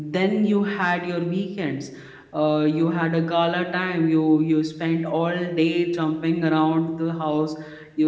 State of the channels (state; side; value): identical; both; correlation 1.00